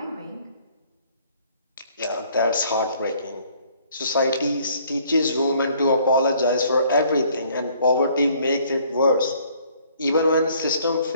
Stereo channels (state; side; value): inverted; both; correlation -0.61